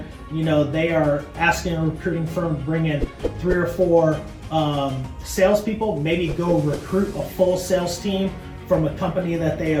they are asking a recruiting firm to bring in 3 or 4 salespeople, maybe go recruit a full sales team from a company that they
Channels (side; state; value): both; identical; correlation 1.00